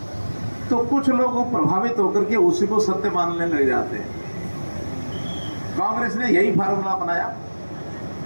तो कुछ लोग प्रभावित होकर के उसी को सत्य मानने लग जाते हैं। कांग्रेस ने यही फार्मूला बनाया,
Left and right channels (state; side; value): inverted; both; correlation -1.00